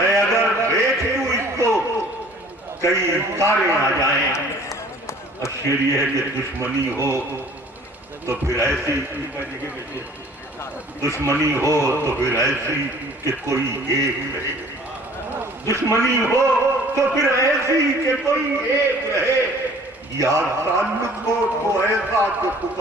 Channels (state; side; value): normal; both; correlation 0.51